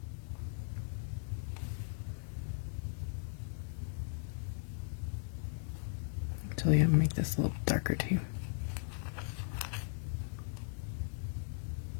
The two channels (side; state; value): right; silent; digital silence